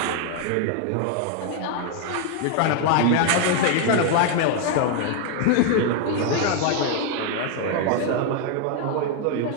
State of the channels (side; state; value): both; different; correlation 0.01